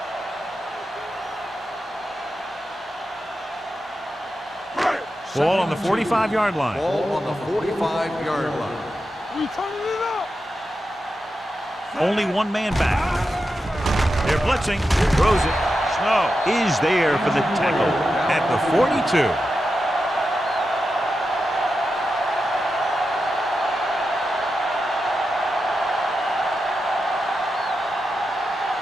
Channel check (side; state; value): both; normal; correlation 0.89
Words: Ball on the 45-yard line. Ball on the 45-yard line. We turning it up. Only one man back. They're blitzing. Throws it. Snow is there for the tackle at the 42.